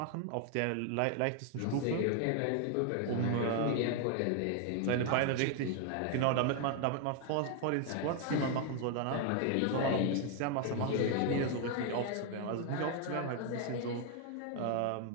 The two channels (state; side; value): different; both; correlation 0.00